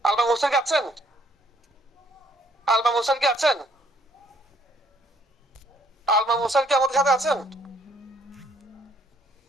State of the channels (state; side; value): normal; both; correlation 0.66